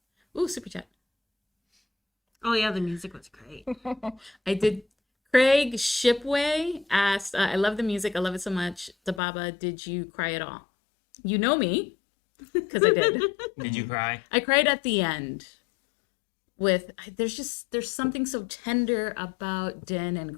Ooh, super chat. Oh yeah, the music was great. I did. Craig Shipway asked, "I love the music. I love it so much. Dababa, did you cry at all?" You know me, because I did. Did you cry? I cried at the end. There's something so tender about Din and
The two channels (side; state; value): right; drops out; at 9.2 s